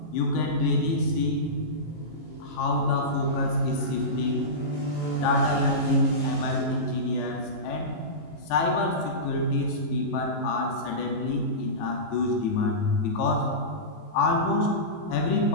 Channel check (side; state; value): right; late; 19 ms